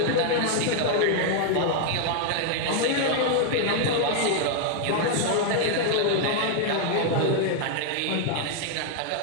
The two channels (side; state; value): both; different; correlation 0.00